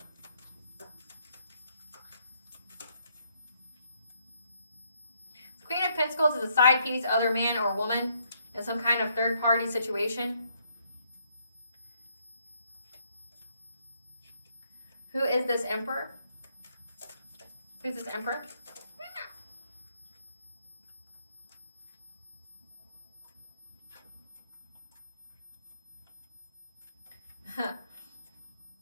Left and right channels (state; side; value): inverted; both; correlation -0.72